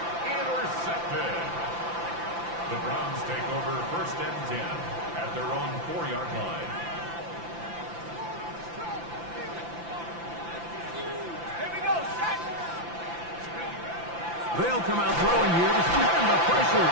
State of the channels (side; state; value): left; late; 5.9 ms